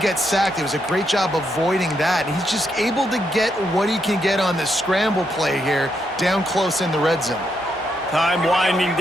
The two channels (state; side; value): normal; both; correlation 0.79